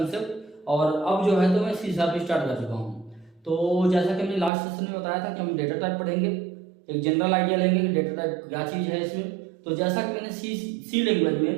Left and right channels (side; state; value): left; drops out; at 4.5 s